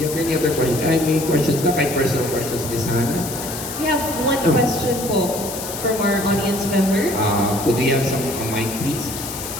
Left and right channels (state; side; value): noise; left; hiss, 8 dB below the sound